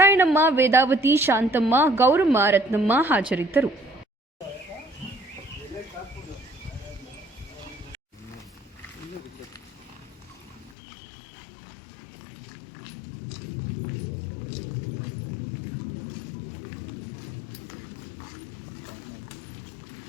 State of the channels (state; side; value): drops out; right; at 10.8 s